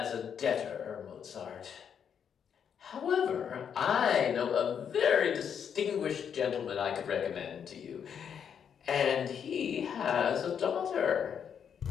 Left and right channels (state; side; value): quieter; right; 7.8 dB